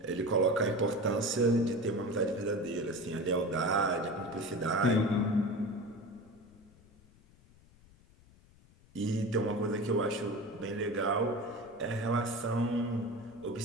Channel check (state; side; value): noise; left; rumble, 27 dB below the sound